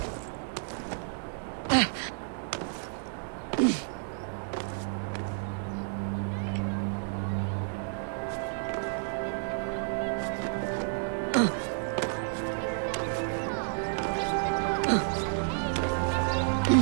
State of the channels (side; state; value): left; silent; 57 dB below the other